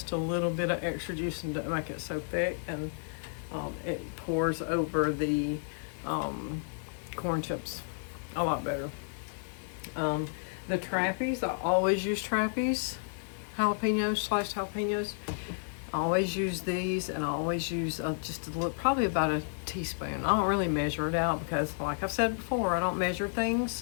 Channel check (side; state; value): right; silent; 57 dB below the other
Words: a little bit of extra juice and to make it so thick, and It pours over the corn chips a lot better. The trappies, I always use trappies, jalapenos, sliced jalapenos. I always use these, and I always use just a little, probably about a teaspoon. I don't really measure it out because, like I've said before, I don't measure